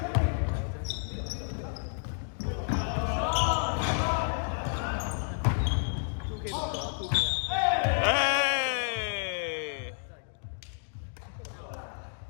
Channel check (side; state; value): right; silent; digital silence